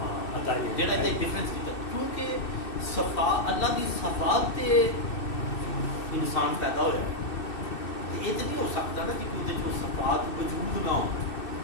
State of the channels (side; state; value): right; late; 2.6 ms